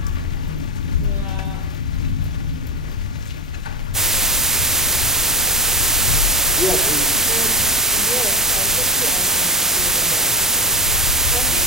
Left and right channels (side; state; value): both; normal; correlation 0.18